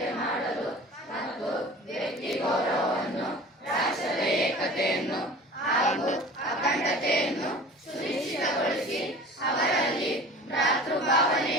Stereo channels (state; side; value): normal; both; correlation 0.40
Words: ಮಾಡಲು ಮತ್ತು ವ್ಯಕ್ತಿ ಗೌರವವನ್ನು ರಾಷ್ಟ್ರದ ಏಕತೆಯನ್ನು ಹಾಗೂ ಅಖಂಡತೆಯನ್ನು ಸುನಿಶ್ಚಿತಗೊಳಿಸಿ ಅವರಲ್ಲಿ